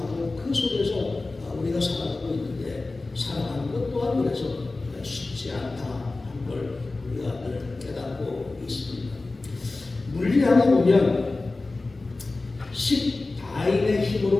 그 속에서 우리가 살아가고 있는데 살아가는 것 또한 그래서 쉽지 않다 하는 걸 우리가 늘 깨닫고 있습니다. 물리학에 보면 10다인의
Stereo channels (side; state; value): right; quieter; 3.3 dB